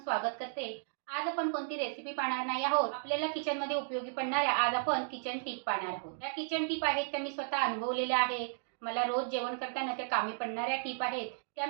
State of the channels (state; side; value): silent; left; digital silence